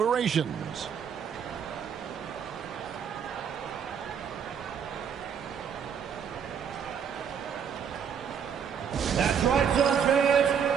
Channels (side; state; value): left; quieter; 7.6 dB